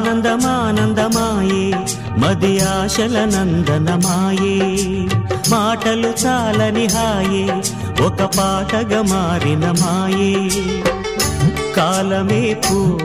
మది ఆశల నందనమాయే. మాటలు చాలని హాయే ఒక పాటగా మారిన మాయే. కాలమే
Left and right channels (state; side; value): identical; both; correlation 1.00